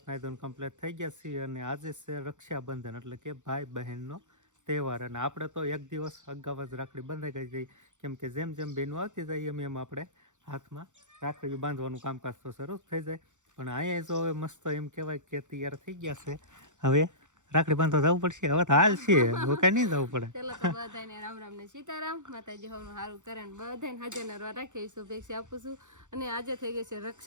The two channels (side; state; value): left; late; 0.85 ms